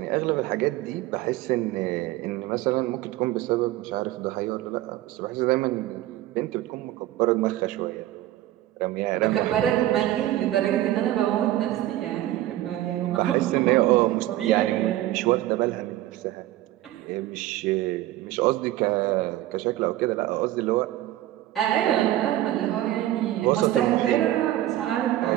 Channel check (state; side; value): quieter; left; 14.8 dB